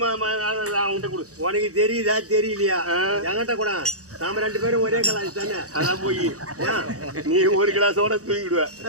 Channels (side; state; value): left; late; 0.66 ms